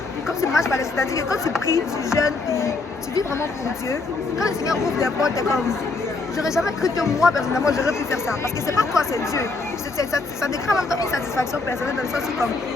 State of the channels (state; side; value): quieter; right; 3.7 dB